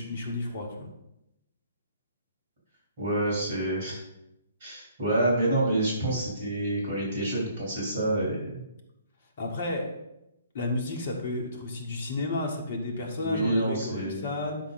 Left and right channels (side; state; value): both; inverted; correlation -0.59